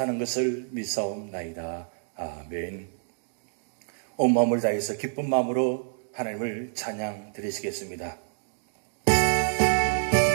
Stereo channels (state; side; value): silent; left; digital silence